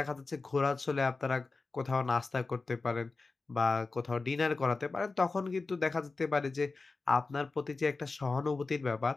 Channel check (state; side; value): quieter; right; 3.9 dB